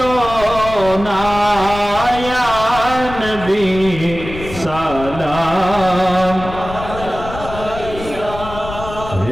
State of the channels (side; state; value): left; noise; rumble, 11 dB below the sound